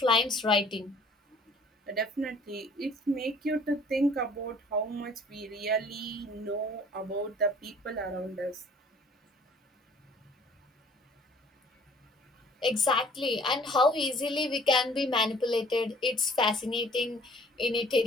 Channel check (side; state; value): both; normal; correlation 0.54